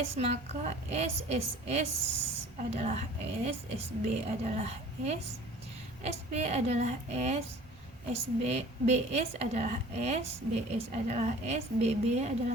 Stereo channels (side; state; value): right; noise; rumble, 24 dB below the sound